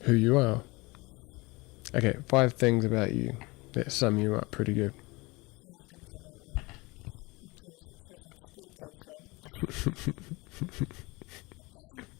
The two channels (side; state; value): right; quieter; 24.4 dB